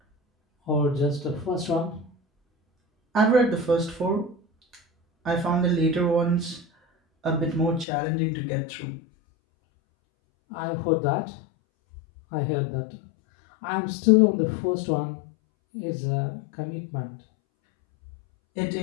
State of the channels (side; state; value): right; drops out; at 7.9 s